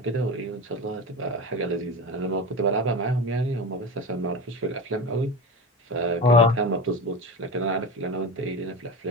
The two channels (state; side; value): normal; both; correlation 0.25